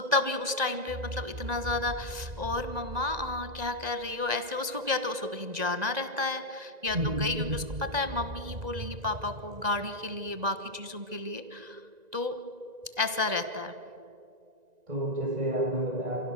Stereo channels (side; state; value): left; late; 1.9 ms